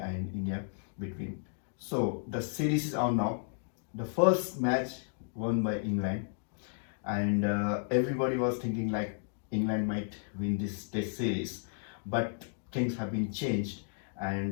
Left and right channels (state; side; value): silent; right; digital silence